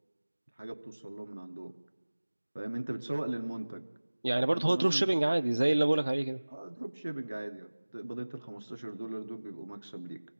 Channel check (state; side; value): inverted; both; correlation -1.00